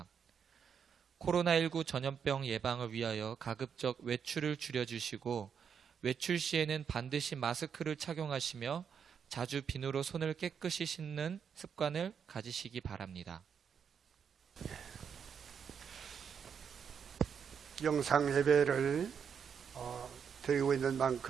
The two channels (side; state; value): left; quieter; 7.2 dB